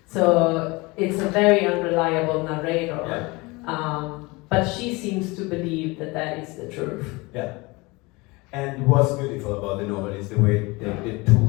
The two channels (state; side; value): quieter; right; 24.5 dB